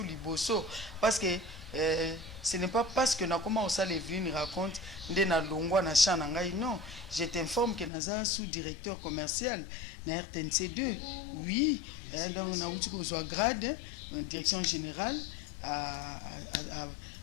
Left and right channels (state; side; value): drops out; right; at 7.9 s